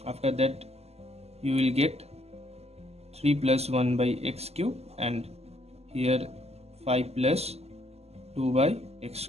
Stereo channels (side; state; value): left; late; 0.30 ms